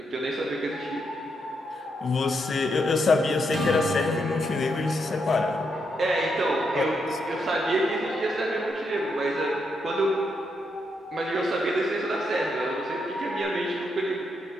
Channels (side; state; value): both; normal; correlation 0.80